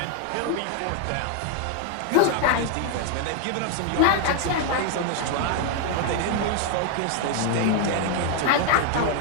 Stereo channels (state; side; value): different; both; correlation 0.00